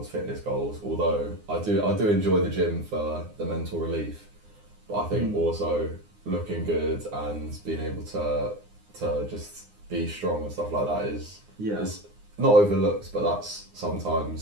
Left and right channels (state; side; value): late; left; 9.7 ms